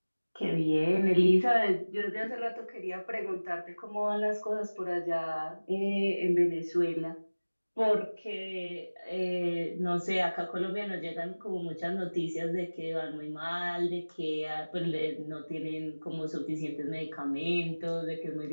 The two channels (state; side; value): inverted; both; correlation -1.00